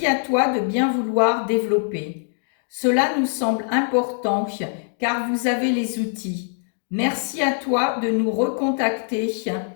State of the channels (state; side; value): silent; right; 60 dB below the other